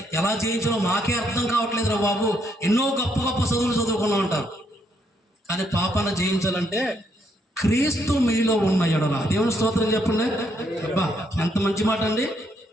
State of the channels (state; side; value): normal; both; correlation 0.74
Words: ఎలా జయించాలో మాకే అర్థం కావట్లేదురా బాబు, ఎన్నో గొప్ప గొప్ప చదువులు చదువుకున్నా ఉంటారు. కానీ పాపాన్ని జయించాలంటే క్రీస్తు మీలో ఉన్న ఎడల, దేవుని స్తోత్రం చెప్పండి. అబ్బా ఎంత మంచి మాట అండి.